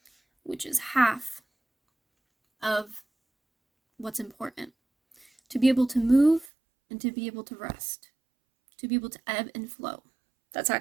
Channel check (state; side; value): drops out; left; at 6.5 s